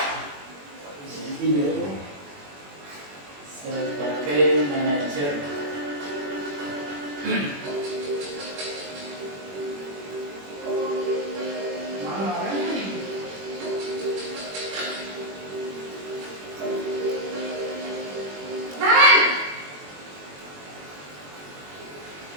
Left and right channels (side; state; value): left; late; 21 ms